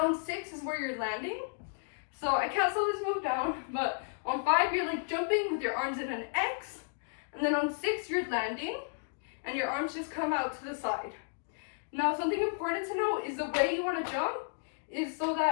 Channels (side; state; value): right; silent; digital silence